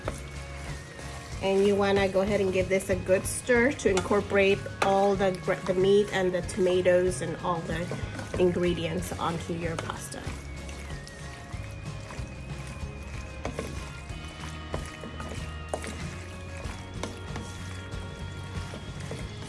And you want to go ahead and give this a good stir to incorporate all the meat and the tomatoes and all the ingredients onto your pasta.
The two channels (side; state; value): both; identical; correlation 1.00